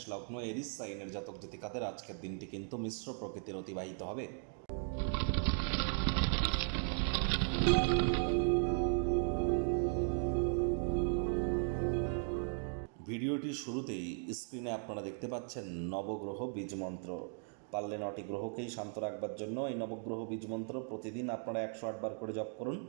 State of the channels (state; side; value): silent; left; 53 dB below the other